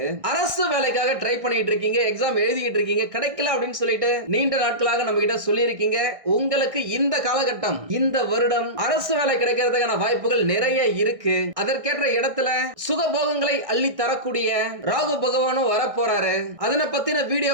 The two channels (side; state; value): left; late; 1.6 ms